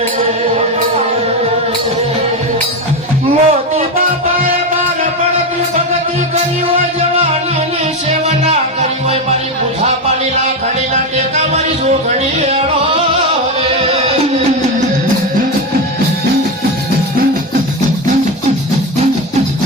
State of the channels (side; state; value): both; normal; correlation 0.14